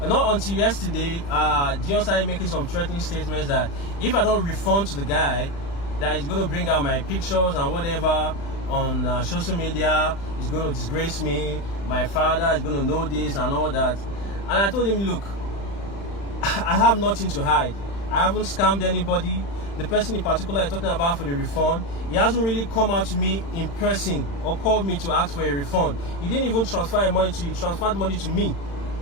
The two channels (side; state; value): right; late; 35 ms